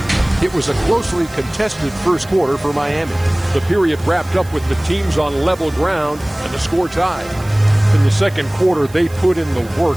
It was a closely contested first quarter for Miami. The period wrapped up with the teams on level ground and the score tied. In the second quarter, they put in the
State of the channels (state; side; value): noise; right; hiss, 23 dB below the sound